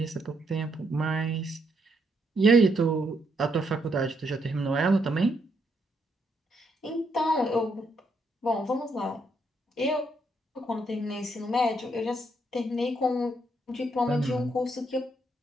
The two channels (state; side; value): normal; both; correlation 0.75